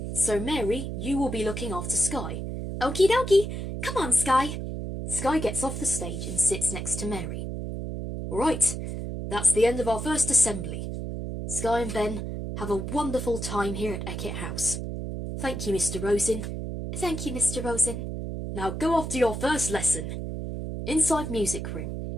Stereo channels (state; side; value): noise; right; hum, 5 dB below the sound